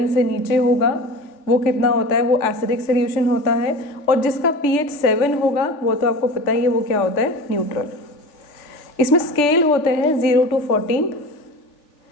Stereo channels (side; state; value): right; late; 3.4 ms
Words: से नीचे होगा वो कितना होता है? वो एसिडिक सॉल्यूशन होता है, और जिसका pH 7 होगा वो तो आपको पता ही है वो क्या होता है? न्यूट्रल। इसमें स्केल होते हैं 0 to 14,